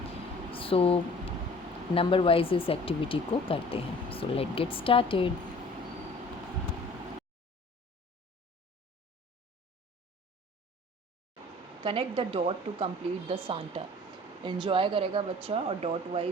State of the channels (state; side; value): normal; both; correlation 0.48